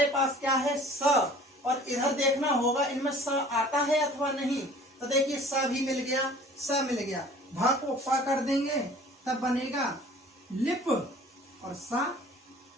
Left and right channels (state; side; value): normal; both; correlation 0.48